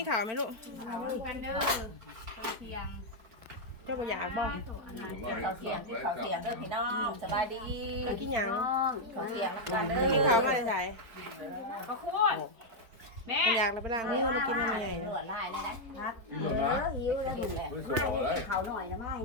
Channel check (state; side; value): late; left; 4.4 ms